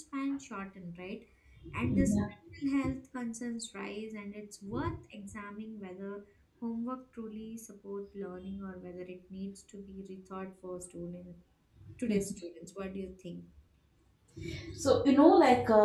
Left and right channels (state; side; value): identical; both; correlation 1.00